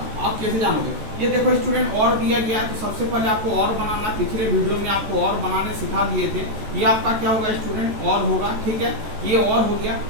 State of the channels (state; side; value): late; left; 14 ms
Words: आप कैसे जानोगे। ये देखो स्टूडेंट, और दिया गया है तो सबसे पहले आपको और बनाना, पिछले वीडियो में आपको और बनाने सिखा दिए थे। ये आपका क्या होगा स्टूडेंट, और होगा, ठीक है। ये और हो गया।